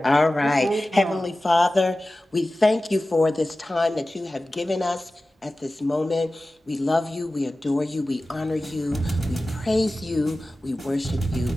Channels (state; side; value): normal; both; correlation 0.96